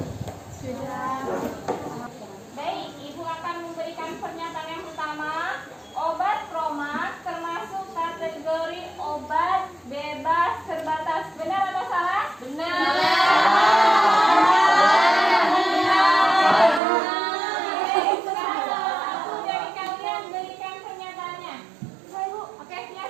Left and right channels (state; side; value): drops out; left; at 16.8 s